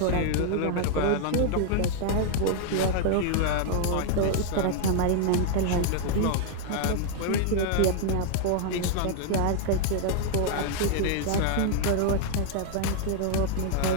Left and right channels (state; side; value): different; both; correlation 0.00